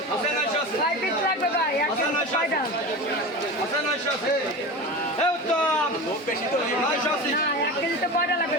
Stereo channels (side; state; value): both; normal; correlation 0.29